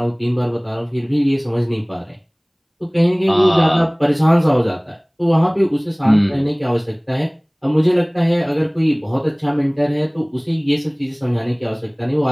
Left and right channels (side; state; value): both; identical; correlation 1.00